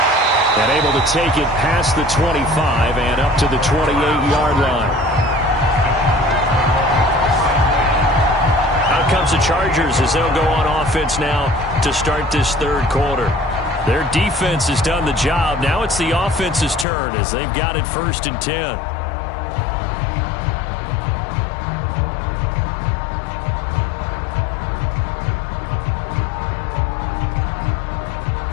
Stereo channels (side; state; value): right; drops out; at 16.9 s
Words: And able to take it past the 25 and up to the 28-yard line. Out comes the Chargers as they'll go on offense now to start this third quarter. Their defense has done the job. Now it's the offense's turn as they've got it 1st and 10.